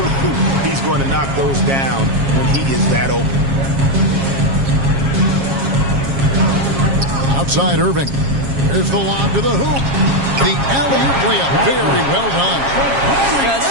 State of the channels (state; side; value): late; left; 7.3 ms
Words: he's going to knock those down when he is that open. Outside Irving. Here's the lob to the hoop. The alley-oop layup. Very well done.